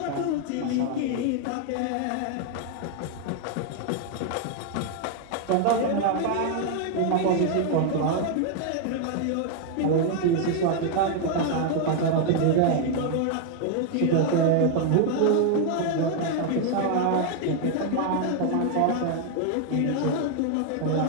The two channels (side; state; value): both; different; correlation 0.00